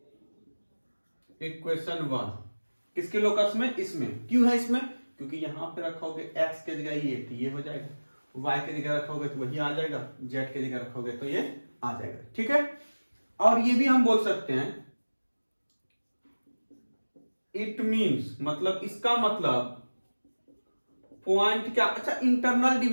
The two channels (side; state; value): both; inverted; correlation -1.00